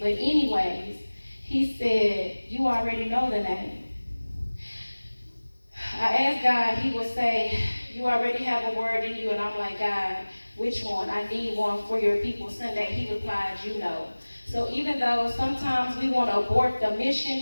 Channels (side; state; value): both; inverted; correlation -1.00